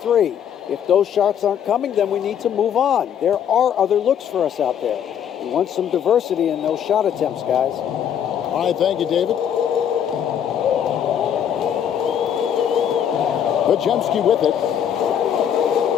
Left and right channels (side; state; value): right; quieter; 9.0 dB